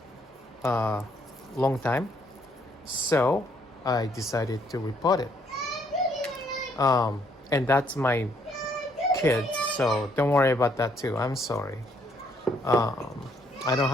long time, so I decided to repot it. And that's my kid, so don't worry about that too. I'm sorry. I don't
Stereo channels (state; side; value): normal; both; correlation 0.69